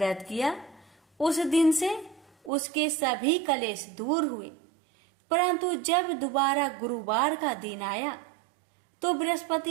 किया। उस दिन से उसके सभी कलेश दूर हुए। परंतु जब दोबारा गुरुवार का दिन आया तो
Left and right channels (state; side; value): drops out; left; at 2.5 s